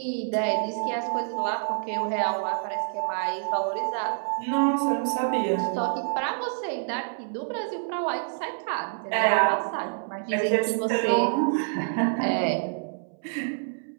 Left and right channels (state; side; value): silent; left; 60 dB below the other